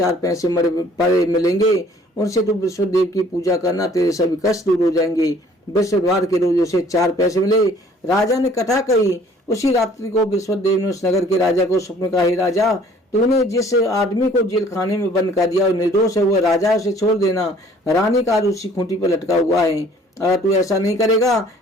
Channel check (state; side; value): normal; both; correlation 0.56